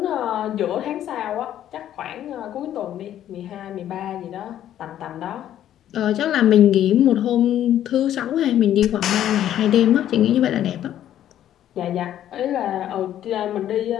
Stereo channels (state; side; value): quieter; right; 11.4 dB